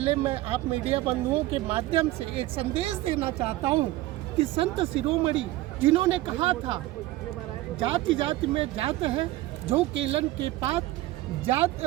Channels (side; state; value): left; quieter; 17.1 dB